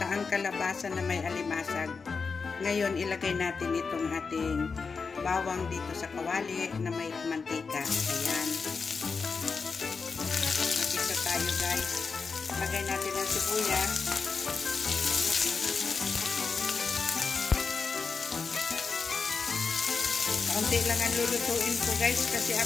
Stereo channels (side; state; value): right; quieter; 5.0 dB